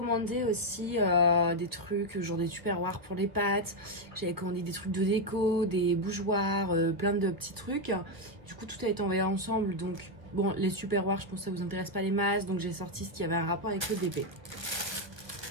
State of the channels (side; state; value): left; late; 1.1 ms